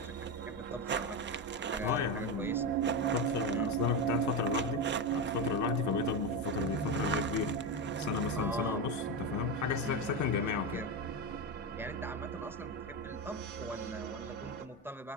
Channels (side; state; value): both; normal; correlation 0.14